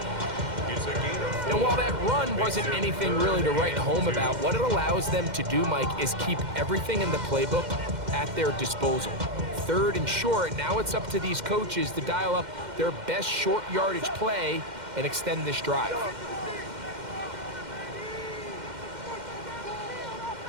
And while that run wasn't anything really to write home about, what it allows them to do, Mike, is keep everything in the playbook at their disposal. 3rd and short, now it's up to these coaches to dial up their best short yardage play and extend this drive.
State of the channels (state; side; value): late; left; 2.1 ms